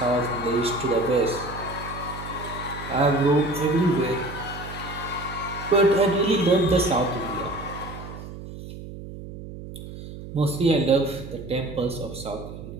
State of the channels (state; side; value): noise; right; hum, 12 dB below the sound